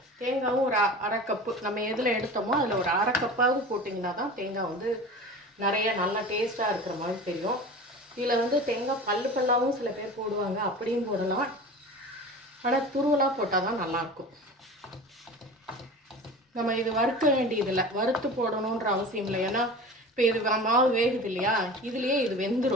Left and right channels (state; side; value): normal; both; correlation 0.35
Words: தேங்காயும் ஒரு 1/2 கப்பு நம்ம எதில் எடுத்தோமோ அதில் ஒரு 1/2 கப்பாவது போட்டிங்கன்னா தான் தேங்காய் வந்து நிறைய நல்லா டேஸ்ட்டாக இருக்கிற மாதிரி தெரியும். இதில் வந்து தேங்காய் பல்லாகவும் சில பேர் போடுவாங்க, அப்படியும் போடலாம். ஆனால் துருவலாக போட்டால் தான் நல்லாயிருக்கும். நம்ம இது வறுக்க வேண்டியதில்லை, வறுத்து போடணுன்ற அவசியம் இல்லை. ஏன்னா இப்போ இது மாவு வேகுது இல்லையா, இதுலேயே இது